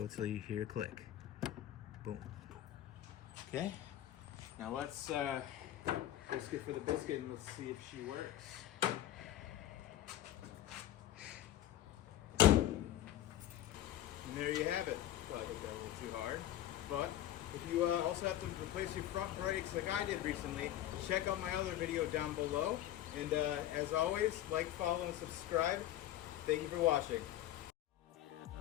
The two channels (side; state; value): right; quieter; 12.8 dB